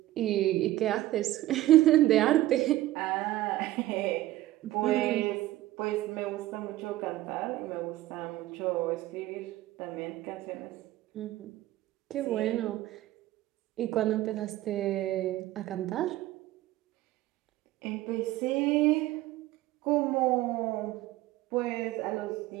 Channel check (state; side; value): quieter; left; 15.7 dB